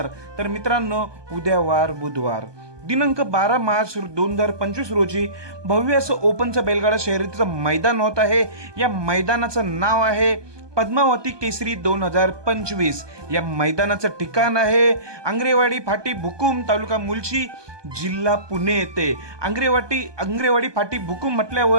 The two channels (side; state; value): left; late; 1.2 ms